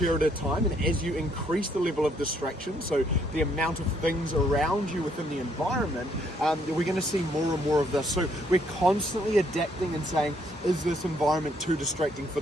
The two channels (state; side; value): normal; both; correlation 0.69